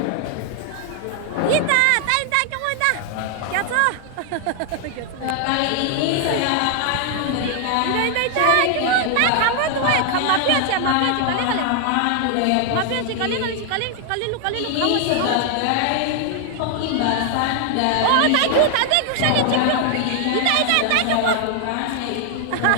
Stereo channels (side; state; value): both; different; correlation 0.00